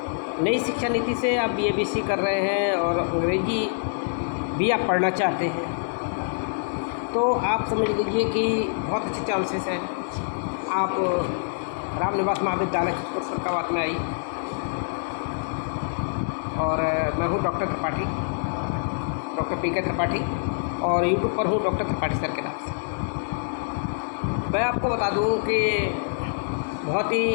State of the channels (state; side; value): silent; right; 60 dB below the other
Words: नीति से आप BA-BSc कर रहे हैं और अंग्रेजी भी आप पढ़ना चाहते हैं, तो आप समझ लीजिए कि बहुत अच्छे चांसेस हैं। आप रामनिवास महाविद्यालय चित्रकूट फर्रुखाबाद में आई, और मैं हूँ डॉक्टर PK त्रिपाठी, और यूट्यूब पर हूँ डॉक्टर त्रिपाठी सर के नाम से। मैं आपको बता दूँ कि